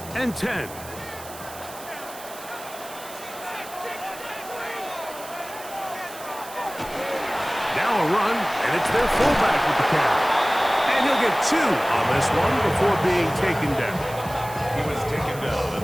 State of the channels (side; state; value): right; noise; hiss, 15 dB below the sound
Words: and 10. Now a run, and it's their fullback with the catch. And he'll get 2 on this one before being taken down. He was taken down at